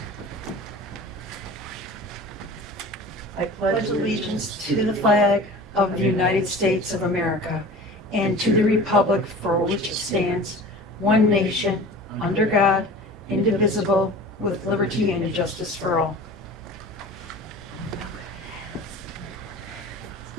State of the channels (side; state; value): both; normal; correlation 0.39